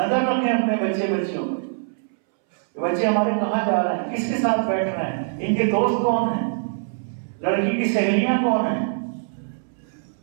رکھیں اپنے بچیوں پر. بچے ہمارے کہاں جا رہے ہیں, کس کے ساتھ بیٹھ رہے ہیں, ان کے دوست کون ہیں, لڑکی کی سہیلیاں کون ہیں,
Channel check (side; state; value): left; silent; 63 dB below the other